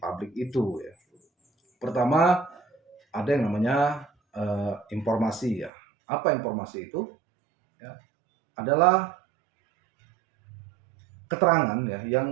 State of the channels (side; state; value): left; drops out; at 5.7 s